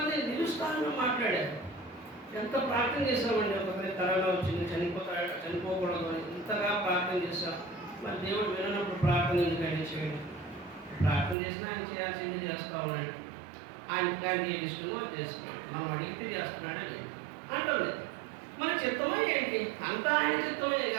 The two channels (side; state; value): left; drops out; at 11.4 s